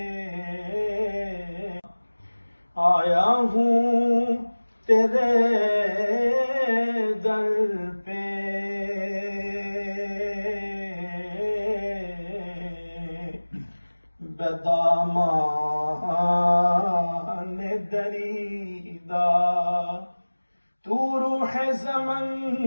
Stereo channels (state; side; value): inverted; both; correlation -1.00